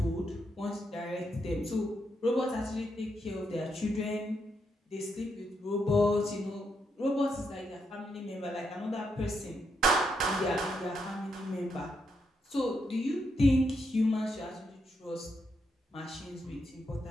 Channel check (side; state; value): both; normal; correlation 0.80